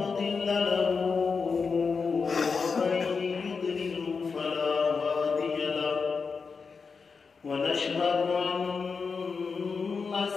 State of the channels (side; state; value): right; quieter; 5.1 dB